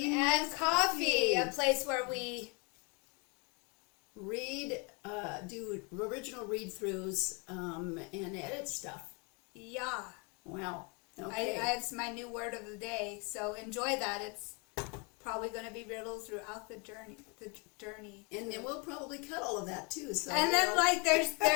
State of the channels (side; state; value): right; quieter; 32.4 dB